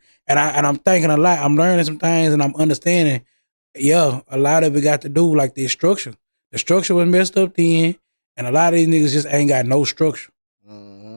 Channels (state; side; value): inverted; both; correlation -1.00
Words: and I'm thinking a lot. I'm learning some things, and I'm understanding. Yeah, a lot of it got to do like the structure. The structure was messed up then, and a lot of these niggas just ain't got no structure,